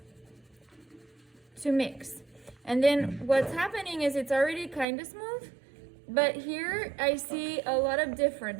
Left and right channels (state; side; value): drops out; left; at 4.9 s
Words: to mix. And then what's happening is it's already kind of smooth, but here I see a lot of